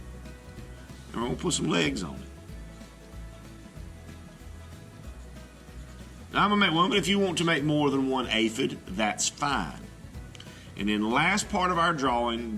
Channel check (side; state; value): both; identical; correlation 1.00